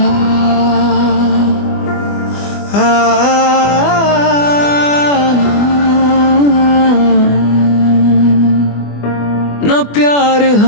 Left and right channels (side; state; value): right; late; 24 ms